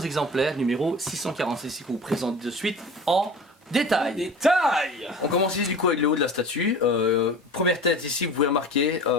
exemplaires, numéro 646 ici qu'on vous présente de suite en détail. Détail. On commence ici du coup avec le haut de la statue. Première tête ici, vous pouvez remarquer,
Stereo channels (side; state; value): both; normal; correlation 0.38